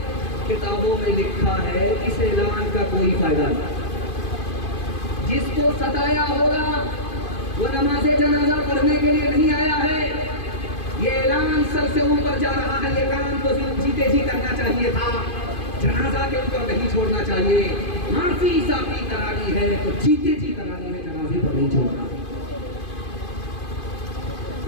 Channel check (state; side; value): late; right; 2.5 ms